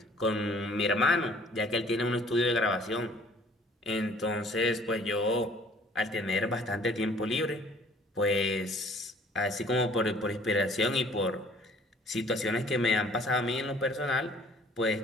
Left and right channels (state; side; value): normal; both; correlation 0.55